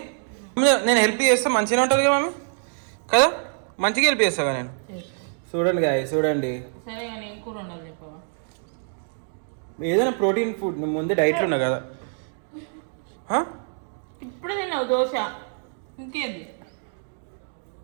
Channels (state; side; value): silent; left; digital silence